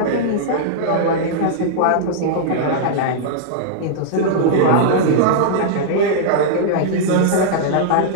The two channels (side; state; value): both; different; correlation -0.02